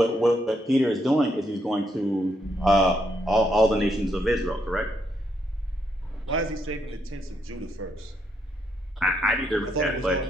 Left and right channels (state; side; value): normal; both; correlation 0.77